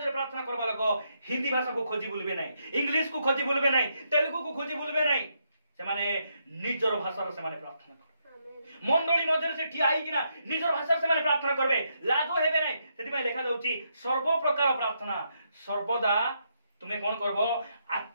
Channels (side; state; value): both; inverted; correlation -0.78